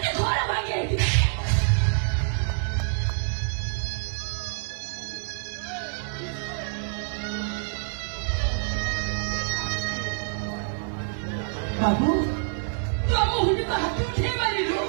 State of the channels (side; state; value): left; silent; 60 dB below the other